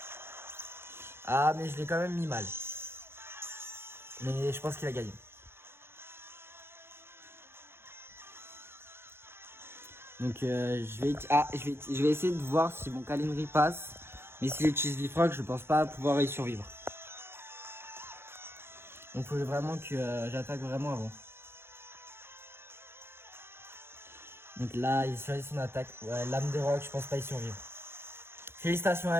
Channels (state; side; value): late; left; 0.12 ms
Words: Mais je l'ai quand même mis mal. Mais je pense qu'il a gagné. Donc je vais essayer de voir si mon câlinerie passe. Mais si j'utilise Bifrock, je pense pas pouvoir y survivre. Donc il faut vraiment que j'attaque vraiment avant. Donc là, il choisit son attaque. Ouais, lame de roc, je pense pas y survivre. Félicitations